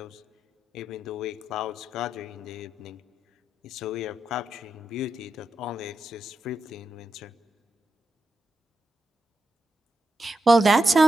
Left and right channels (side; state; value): both; normal; correlation 0.87